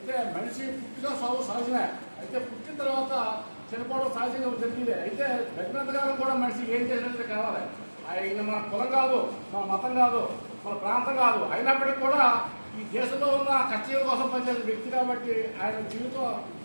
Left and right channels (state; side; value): inverted; both; correlation -1.00